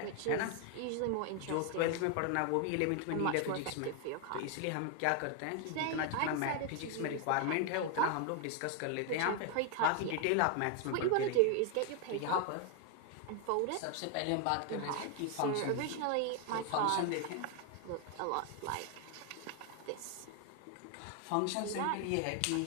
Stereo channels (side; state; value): both; different; correlation 0.01